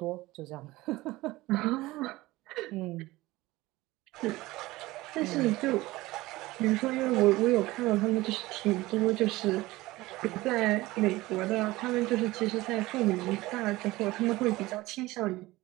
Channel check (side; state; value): left; quieter; 19.1 dB